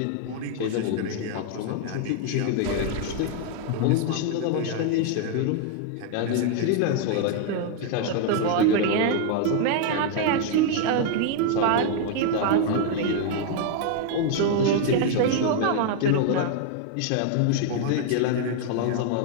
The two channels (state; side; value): different; both; correlation 0.00